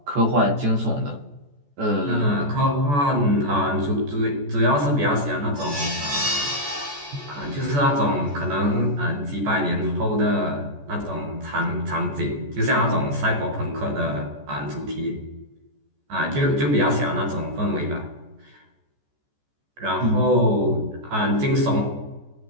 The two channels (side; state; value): left; late; 14 ms